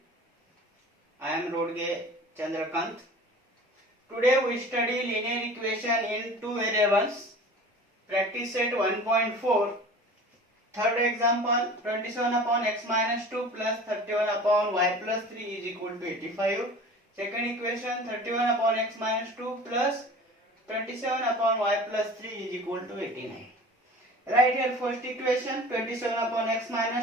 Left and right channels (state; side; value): normal; both; correlation 0.41